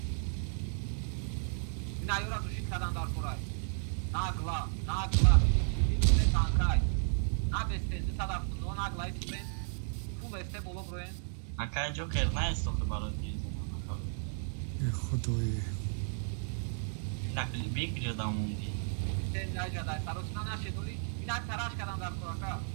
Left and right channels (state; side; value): silent; left; digital silence